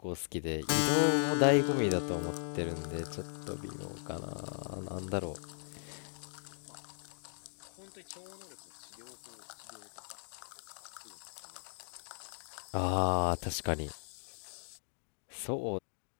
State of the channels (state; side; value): silent; right; digital silence